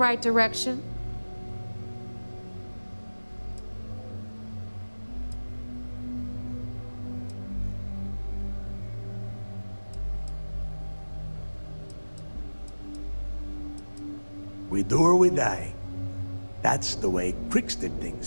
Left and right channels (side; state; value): both; inverted; correlation -1.00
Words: direction. We do or we die. That's the way Crix did